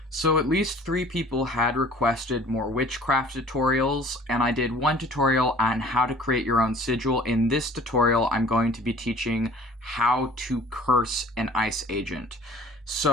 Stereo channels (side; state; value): both; normal; correlation 0.50